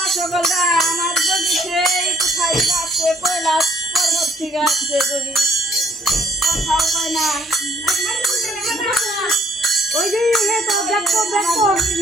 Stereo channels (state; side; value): normal; both; correlation 0.64